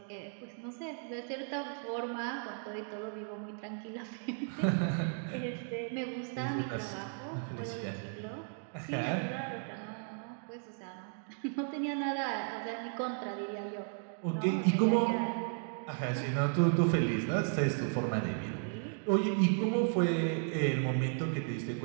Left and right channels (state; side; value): silent; left; 54 dB below the other